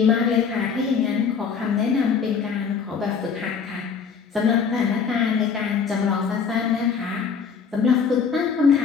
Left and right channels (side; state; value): right; quieter; 6.1 dB